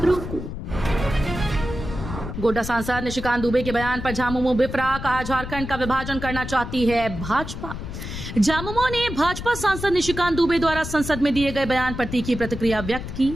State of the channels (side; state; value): left; noise; rumble, 8 dB below the sound